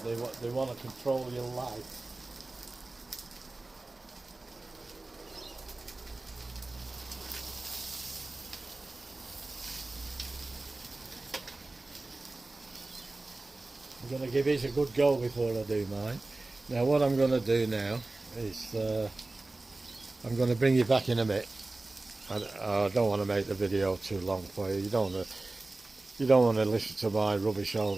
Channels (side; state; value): left; quieter; 3.1 dB